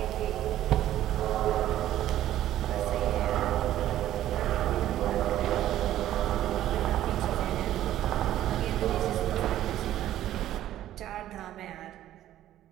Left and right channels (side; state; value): left; quieter; 12.8 dB